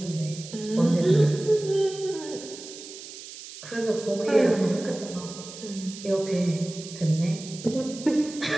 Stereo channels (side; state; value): right; noise; hiss, 14 dB below the sound